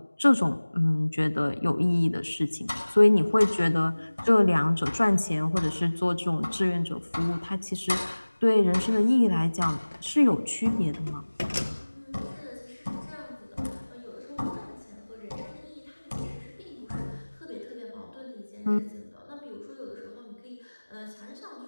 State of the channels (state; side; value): inverted; both; correlation -1.00